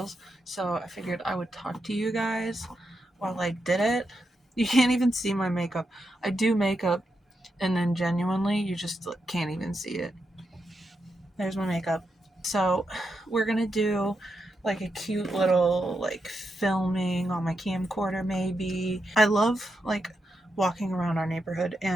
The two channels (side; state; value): both; normal; correlation 0.85